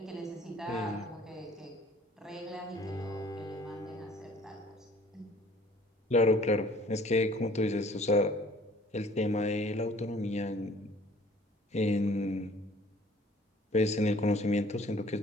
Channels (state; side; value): normal; both; correlation 0.54